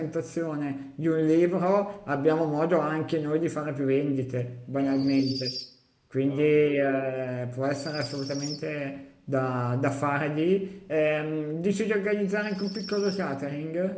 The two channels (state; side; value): identical; both; correlation 1.00